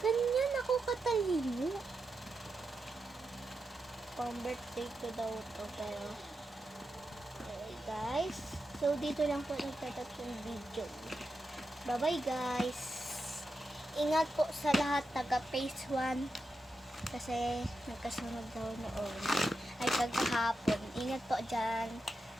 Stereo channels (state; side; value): normal; both; correlation 0.88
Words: ako katalino. Pang birthday ko daw to, pero okay guys. So, dito lang po nagtatapos yung video. Bye-bye guys. Ingat po sa lahat taga phase 1. Kasi nagkasunod daw noon. Ay, kagahapon. Ingat po dyan.